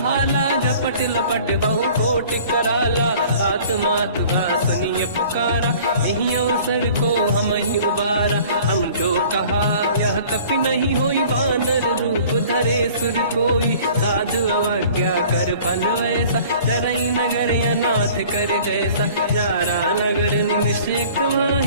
झपट लपट बहु कोटि कराला। आत्मात का सुनिय पुकारा, यही अवसर को हम ही उबारा। हम जो कहा यह कपि नहीं होई, वानर रूप धरे सुर कोई। साधु अवज्ञा कर फल वैसा, जरई नगर अनाथ कर जैसा। जारा नगर निश्चित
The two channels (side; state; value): both; inverted; correlation -0.49